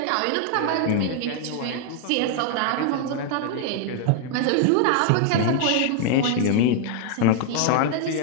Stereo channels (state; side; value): different; both; correlation 0.00